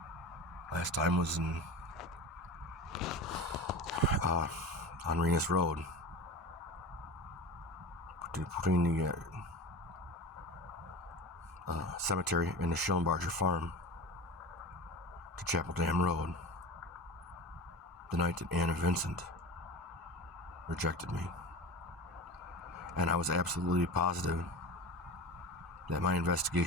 Last time was in on Renus Road, between the cemetery and the Schillenbarger farm to Chapel Dam Road, the night that Anna Vincent rejected me. And I was absolutely positive that my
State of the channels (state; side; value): normal; both; correlation 0.31